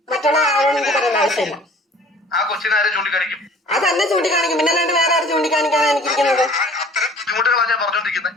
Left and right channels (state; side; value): normal; both; correlation 0.50